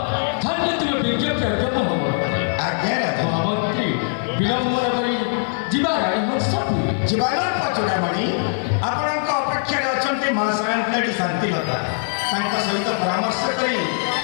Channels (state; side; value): silent; right; digital silence